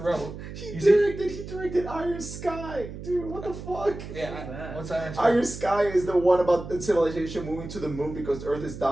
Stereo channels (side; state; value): right; noise; hum, 11 dB below the sound